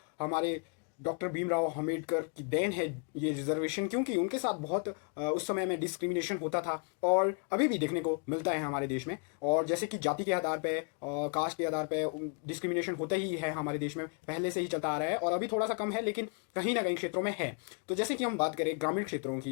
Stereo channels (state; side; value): quieter; right; 39.4 dB